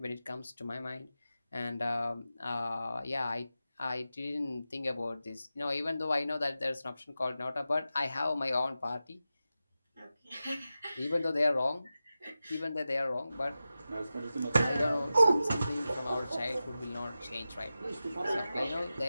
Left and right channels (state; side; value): inverted; both; correlation -0.93